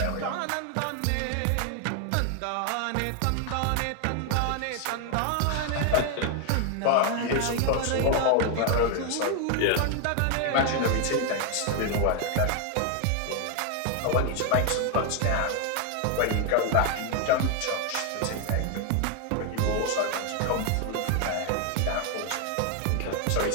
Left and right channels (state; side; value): different; both; correlation 0.01